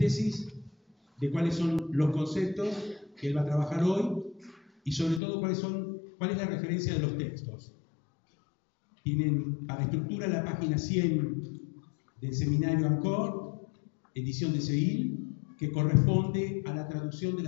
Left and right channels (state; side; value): drops out; right; at 5.2 s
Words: de cuáles son los conceptos que él va a trabajar hoy y sobre todo cuál es la referencia de los textos. Tienen para estructura la página 100 del seminario ANCOR, edición de Seguil, que corresponde a la traducción de